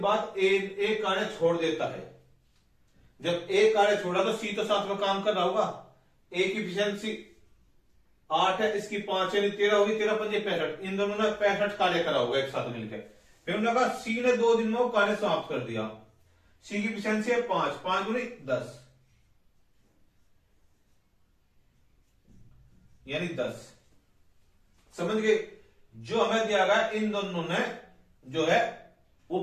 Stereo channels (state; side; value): identical; both; correlation 1.00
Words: बाद ए कार्य छोड़ देता है। जब ए कार्य छोड़ा तो सी तो साथ में काम कर रहा होगा। ए की इफिशियंसी 8 है, इसकी 5 यानी 13 होगी, 13 पंजे 65, इन दोनों ने 65 कार्य करा होगा एक साथ मिलकर। फिर उन्होंने कहा सी ने 2 दिन में वो कार्य समाप्त कर दिया, सी की इफिशियंसी है 5, 5 गुनी 10 यानी 10। समझ गए, जो हमें दिया गया इन दोनों ने जो है वो